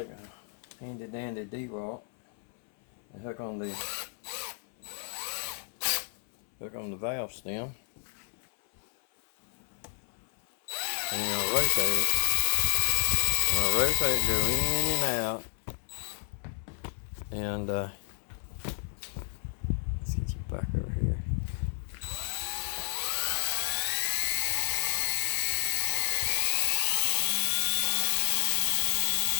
a handy dandy D-Walt and hook on the valve stem. And I'm gonna rotate it. I'll rotate and go in and out. And let's get you back over here.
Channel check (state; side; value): silent; right; 58 dB below the other